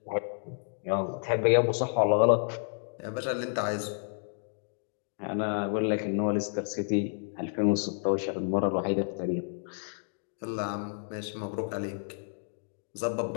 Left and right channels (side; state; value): right; silent; digital silence